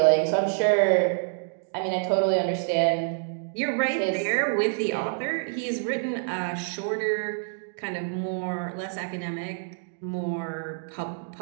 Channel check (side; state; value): left; silent; digital silence